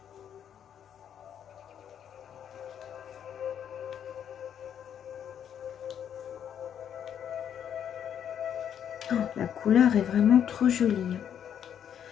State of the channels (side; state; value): right; quieter; 9.0 dB